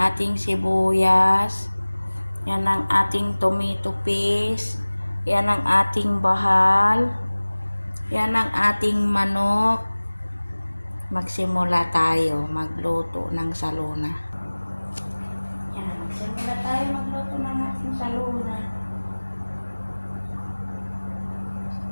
sibuyas. Yan ang ating tomato paste. Yan ang ating bahal. Yan ang ating manok. Magsimula tayo magluto ng salona. Yan, magsimula tayo magluto ng ating salona.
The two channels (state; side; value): inverted; both; correlation -1.00